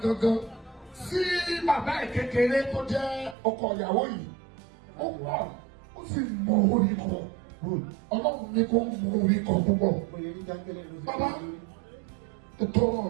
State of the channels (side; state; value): left; drops out; at 3.4 s